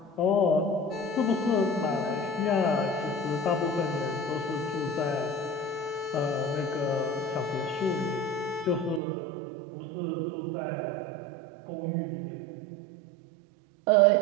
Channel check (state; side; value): drops out; left; at 9.0 s